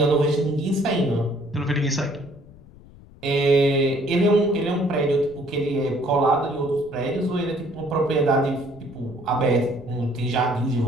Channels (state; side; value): noise; left; rumble, 22 dB below the sound